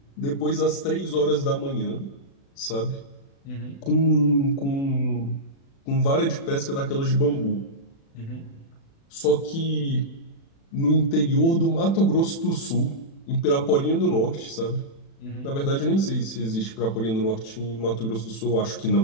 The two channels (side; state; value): right; late; 36 ms